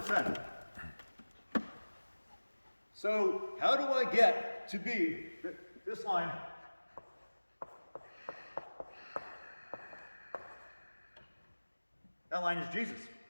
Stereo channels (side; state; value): both; inverted; correlation -1.00